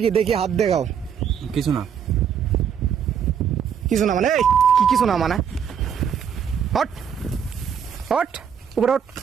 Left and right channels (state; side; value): quieter; left; 7.8 dB